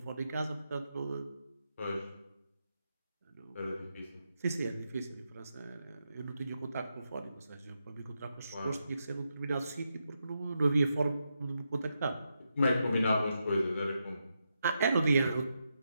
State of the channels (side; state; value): both; inverted; correlation -0.85